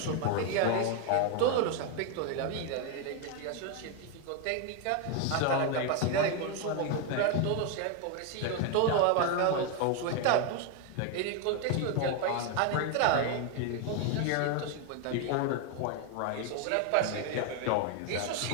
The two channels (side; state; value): both; different; correlation 0.01